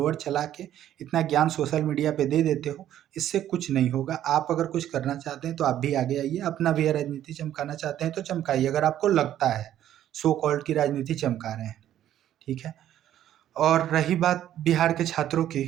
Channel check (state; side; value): quieter; left; 11.7 dB